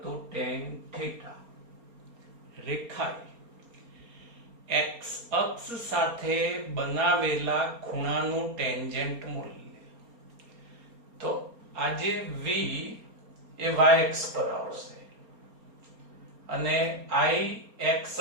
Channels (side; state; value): left; late; 4.3 ms